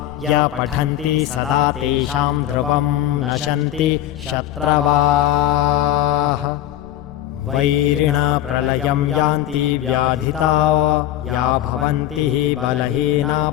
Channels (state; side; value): quieter; right; 12.7 dB